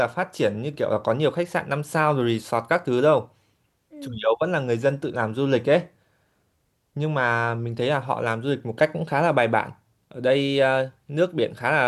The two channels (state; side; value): identical; both; correlation 1.00